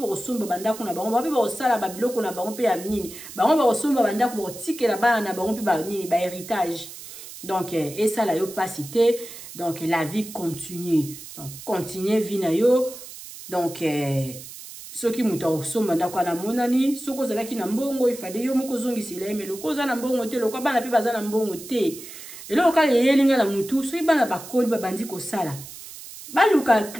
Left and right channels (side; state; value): right; noise; hiss, 14 dB below the sound